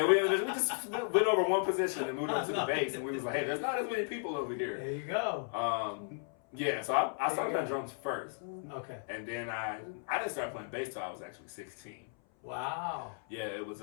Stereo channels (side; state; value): right; silent; 54 dB below the other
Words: we just went over one position and moved up to the bass, and we was like, hey, there's not as many people over here. There you go. Yeah, so I started playing drums first. Okay. And then I didn't start playing bass till I was actually 16. Wow. Yeah, it was